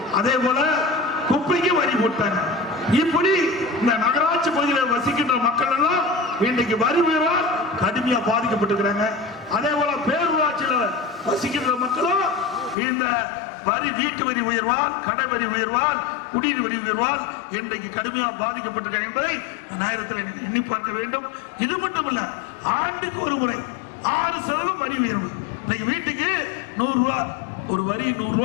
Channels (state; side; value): drops out; right; at 12.8 s